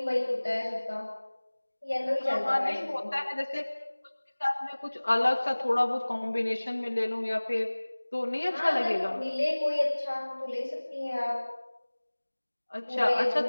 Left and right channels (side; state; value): both; inverted; correlation -1.00